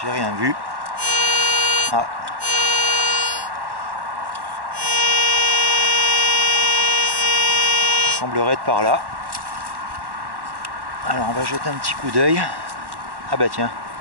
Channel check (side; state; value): left; late; 1.1 ms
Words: j'ai rien vu. Ah. Il semblerait être par là. Alors on va jeter un petit coup d'œil. Ah bah tiens.